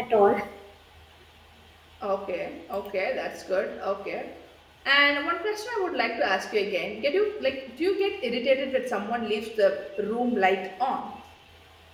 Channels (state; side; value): identical; both; correlation 1.00